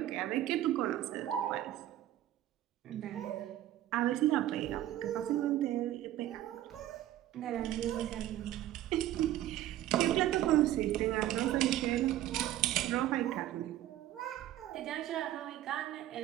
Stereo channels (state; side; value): quieter; left; 13.3 dB